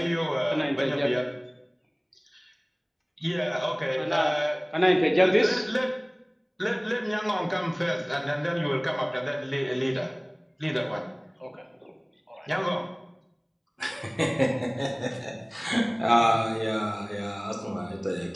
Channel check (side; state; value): both; identical; correlation 1.00